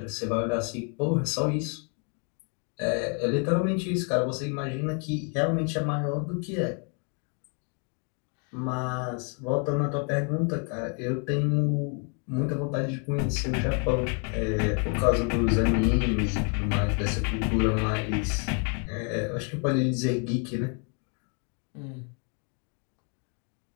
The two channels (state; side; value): quieter; right; 39.6 dB